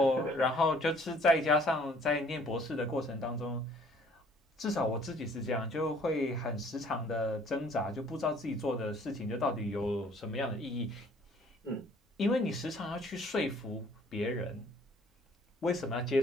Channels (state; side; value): normal; both; correlation 0.57